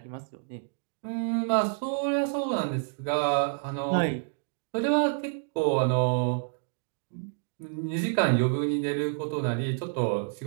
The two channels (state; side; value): silent; left; digital silence